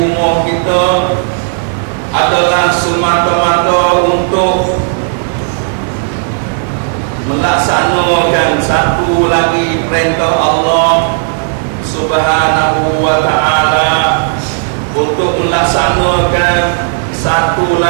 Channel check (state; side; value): silent; left; digital silence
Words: kita adalah semata-mata untuk melaksanakan satu lagi perintah Allah Subhanahu wa ta'ala, untuk melaksanakan satu